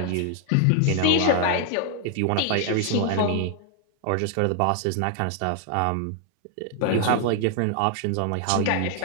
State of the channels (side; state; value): both; different; correlation 0.00